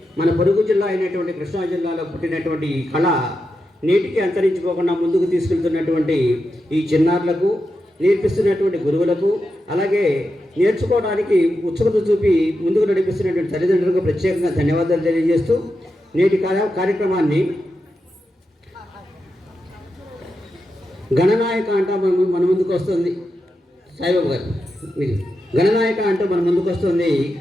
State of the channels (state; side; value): normal; both; correlation 0.88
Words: మన పొరుగు జిల్లా అయినటువంటి కృష్ణా జిల్లాలో పుట్టినటువంటి ఈ కళ నేటికి అంతరించిపోకుండా ముందుకు తీసుకెళ్తున్నటువంటి ఈ చిన్నారులకు, నేర్పిస్తున్నటువంటి గురువులకు, అలాగే నేర్చుకోవడానికి ఉత్సుకత చూపి ముందుకు నడిపిస్తున్నటువంటి తల్లిదండ్రులకు ప్రత్యేకంగా ధన్యవాదాలు తెలియజేస్తూ నేటి కార్యక్రమాన్ని గణనాయక అంటూ మన ముందుకు వస్తుంది సాయిబాబు గారు. మీరు గణనాయక అంటూ మన ముందుకు వస్తుంది